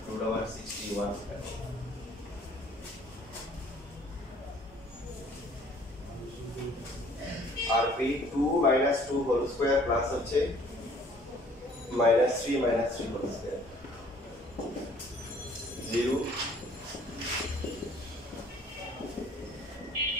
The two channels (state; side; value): normal; both; correlation 0.56